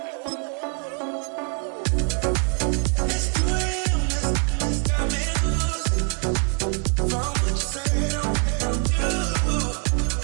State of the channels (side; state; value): left; quieter; 38.1 dB